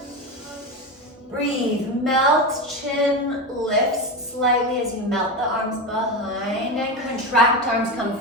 Breathe, melt, chin lifts slightly as you melt the arms behind and contract, arms come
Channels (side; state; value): both; normal; correlation 0.19